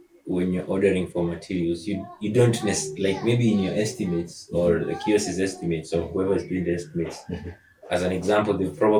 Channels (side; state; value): both; identical; correlation 1.00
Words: when you're ordering for materials, you don't like maybe in your estimates or the QS's estimates or whoever's doing the estimates. As an example, they've